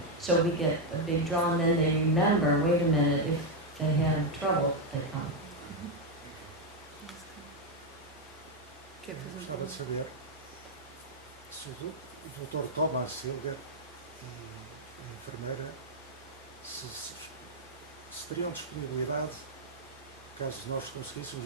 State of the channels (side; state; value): both; normal; correlation 0.02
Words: So we get a big draw, and then they remember, wait a minute, if they have trouble, they come. Gostava de saber se o Dr. Thomas Silger e a enfermeira se teriam disponibilidade, caso nós